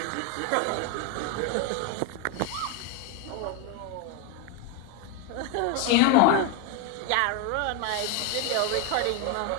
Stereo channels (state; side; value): different; both; correlation 0.02